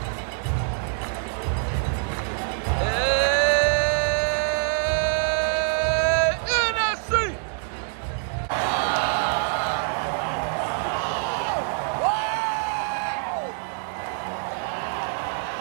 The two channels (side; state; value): left; silent; 62 dB below the other